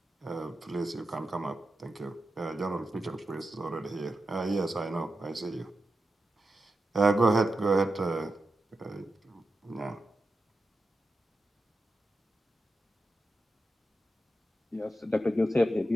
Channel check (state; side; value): normal; both; correlation 0.90